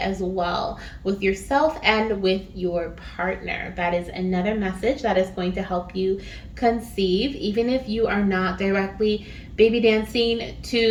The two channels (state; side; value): identical; both; correlation 1.00